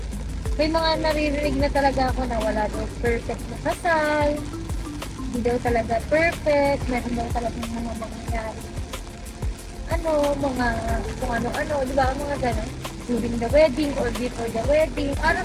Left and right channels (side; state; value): both; identical; correlation 1.00